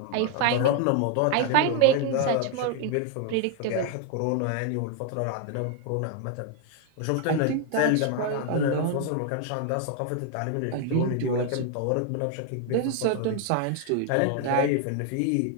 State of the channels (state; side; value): different; both; correlation 0.00